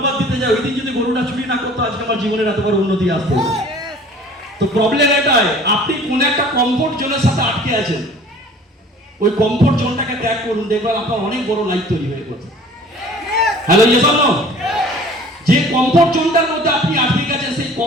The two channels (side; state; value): both; normal; correlation 0.48